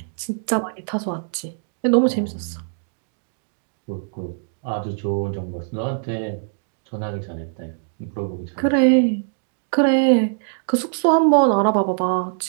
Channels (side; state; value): left; silent; digital silence